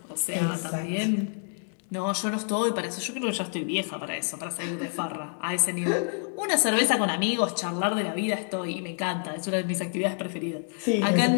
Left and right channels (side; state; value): right; silent; 60 dB below the other